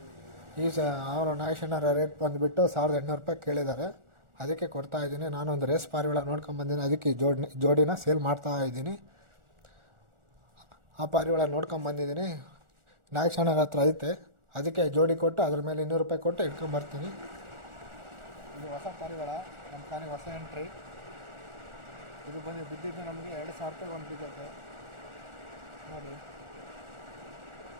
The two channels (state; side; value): late; left; 1.4 ms